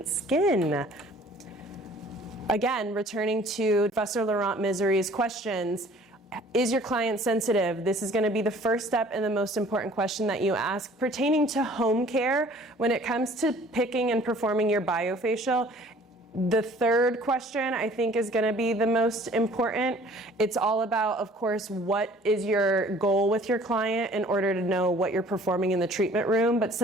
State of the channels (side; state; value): both; normal; correlation 0.52